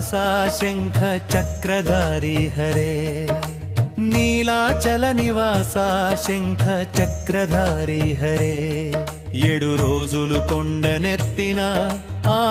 శంఖ చక్రధారి హరే నీలాచల నివాస శంఖ చక్రధారి హరే 7 రోజులు కొండనెత్తిన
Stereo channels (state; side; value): identical; both; correlation 1.00